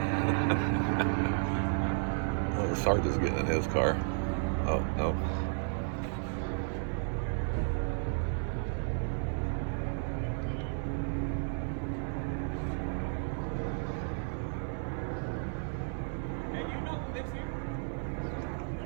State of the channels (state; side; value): silent; left; 56 dB below the other